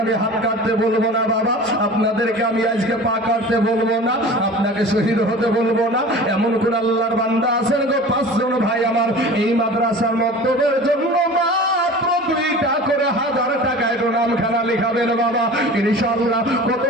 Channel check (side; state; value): both; normal; correlation 0.39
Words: আমি হাত কাটতে বলবো না বাবা, আপনাদেরকে আমি আজকে পা কাটতে বলবো না, আপনাকে শহীদ হতে বলবো না। এমন কোন আল্লাহর বান্দা আছেন গো 5 জন ভাই আমার এই মাদ্রাসার মক্তবের জন্য মাত্র 2টা করে 1000 টাকা একটু নামখানা লিখাবেন বাবা, ইনশাআল্লাহ। কত